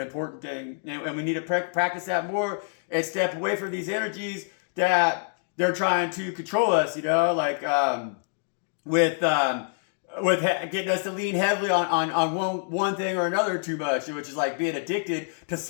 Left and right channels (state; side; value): silent; right; digital silence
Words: important thing. And we need to practice that more and step away from these energies that they're trying to control us, you know, like with getting us to lean heavily on one thing or another too much, which is like being addicted to